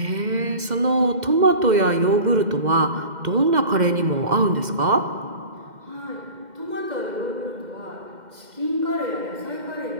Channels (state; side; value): late; left; 2.1 ms